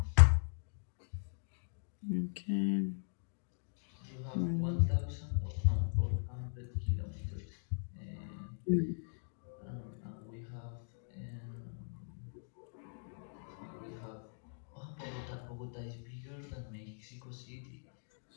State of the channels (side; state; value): right; silent; digital silence